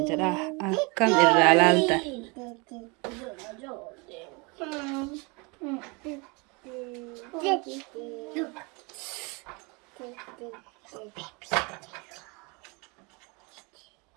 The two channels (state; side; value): quieter; left; 29.2 dB